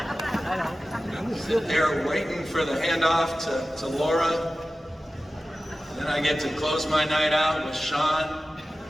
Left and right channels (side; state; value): both; normal; correlation 0.95